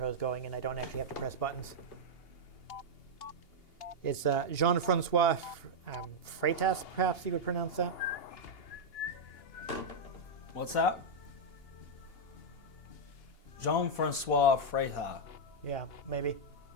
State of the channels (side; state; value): right; late; 2.8 ms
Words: is going and I don't actually have to press buttons. It's Jean-Francois Freitas, perhaps you would pronounce that. What's that? Jean-Francois Freitas. Yeah, maybe.